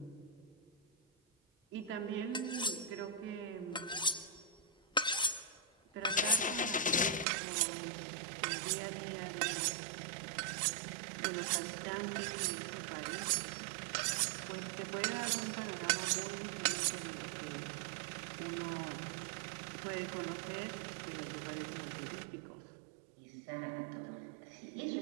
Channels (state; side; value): drops out; left; at 7.2 s